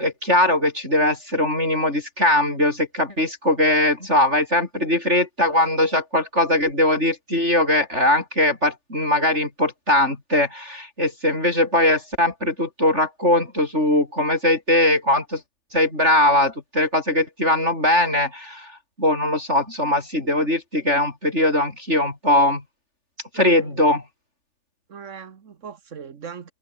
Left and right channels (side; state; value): left; late; 3.4 ms